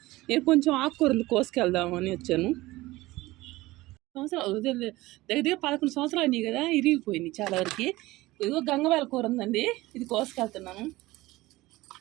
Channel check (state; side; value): quieter; left; 18.9 dB